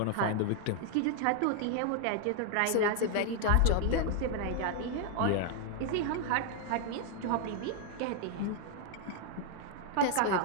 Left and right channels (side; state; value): both; different; correlation 0.00